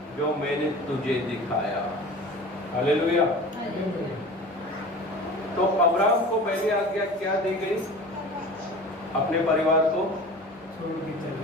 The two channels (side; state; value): both; normal; correlation 0.38